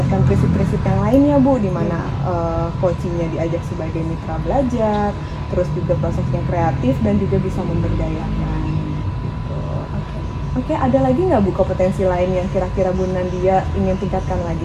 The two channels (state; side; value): identical; both; correlation 1.00